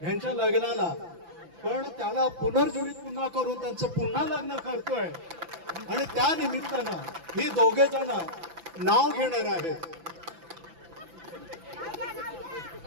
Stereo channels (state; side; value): late; left; 5.9 ms